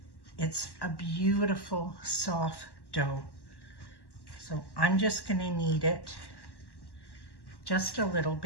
It's a beautiful soft dough. So I'm just going to knead it just a little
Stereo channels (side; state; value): right; late; 1.1 ms